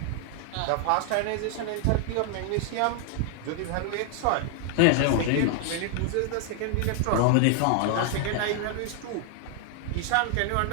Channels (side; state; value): both; different; correlation 0.00